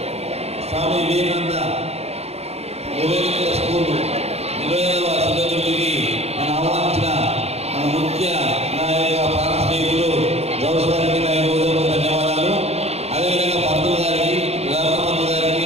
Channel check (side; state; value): left; late; 0.30 ms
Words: స్వామి వివేకానంద స్కూల్ 25వ శతాబ్దికి నన్ను ఆహ్వానించిన మన ముఖ్య నాయక ప్రాణ స్నేహితులు గౌస్ గారికి నా ధన్యవాదాలు. అదేవిధంగా పంతులు గారికి, రామపంతు గారికి,